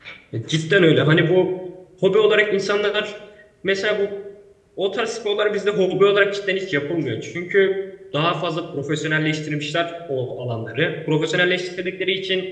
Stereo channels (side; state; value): both; identical; correlation 1.00